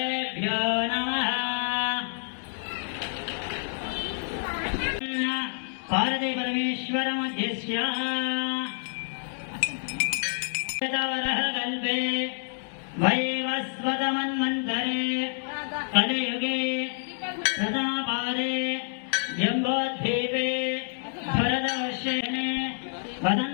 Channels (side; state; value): right; silent; 59 dB below the other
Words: నమః. పార్వతీ పరమేశ్వర మధ్యస్య కల్పే వైవస్వతమన్వంతరే కలియుగే ప్రథమపాదే జంబోద్వీపే భరతవర్షేణే